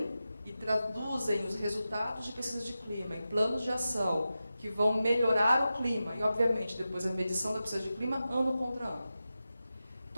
e traduzem os resultados de pesquisa de clima em planos de ação que vão melhorar o clima. E, obviamente, depois a medição da pesquisa de clima, ano contra ano.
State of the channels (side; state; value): both; inverted; correlation -0.93